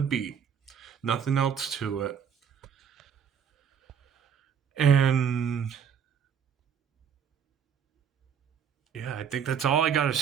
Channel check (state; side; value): quieter; left; 7.6 dB